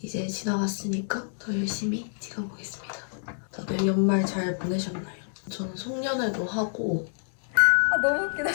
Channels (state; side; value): silent; right; 58 dB below the other